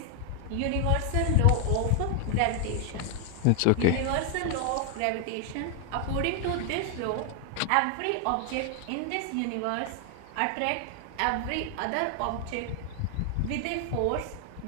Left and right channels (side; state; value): both; different; correlation 0.00